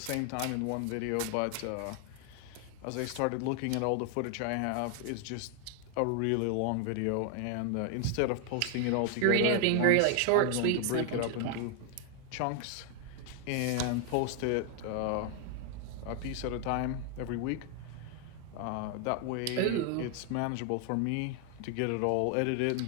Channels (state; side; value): different; both; correlation 0.00